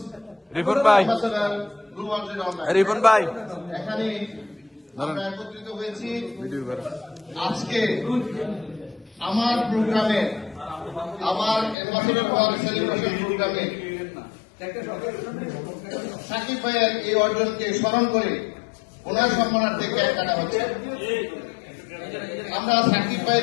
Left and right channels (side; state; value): right; drops out; at 11.8 s